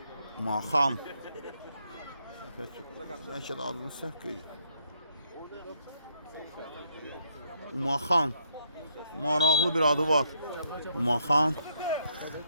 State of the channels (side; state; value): both; inverted; correlation -0.73